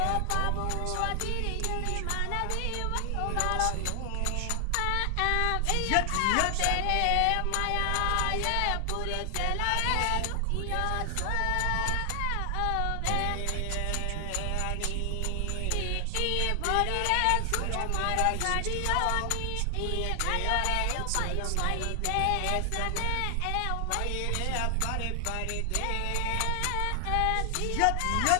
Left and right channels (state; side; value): different; both; correlation 0.00